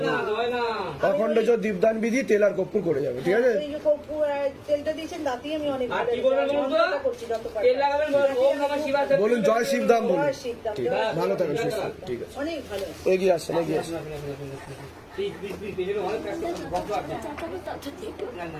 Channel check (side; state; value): both; identical; correlation 1.00